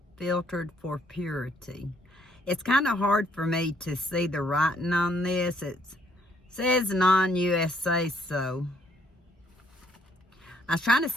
filtered for purity. It's kind of hard for me to see the writing on this. It says non-USA, so I was trying to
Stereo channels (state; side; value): normal; both; correlation 0.68